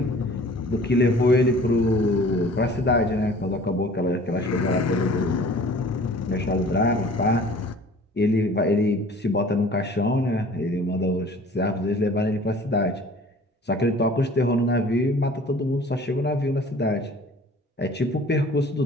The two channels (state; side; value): normal; both; correlation 0.48